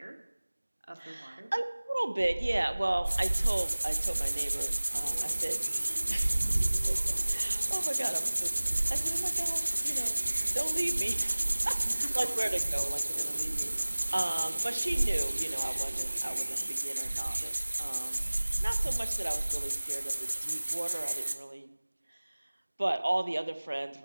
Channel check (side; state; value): both; inverted; correlation -1.00